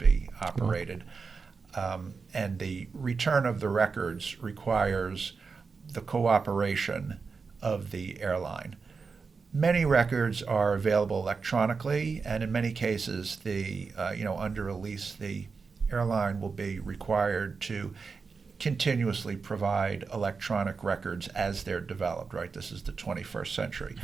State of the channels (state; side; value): quieter; left; 4.9 dB